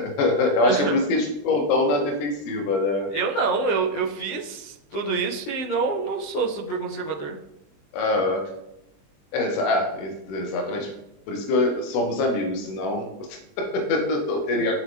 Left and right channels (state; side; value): late; right; 20 ms